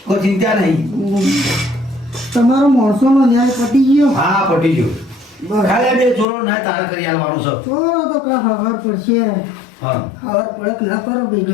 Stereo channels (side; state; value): right; drops out; at 6.2 s